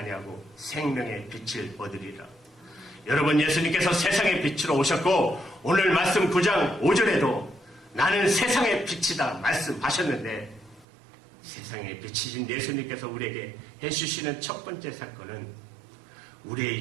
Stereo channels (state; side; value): drops out; left; at 10.9 s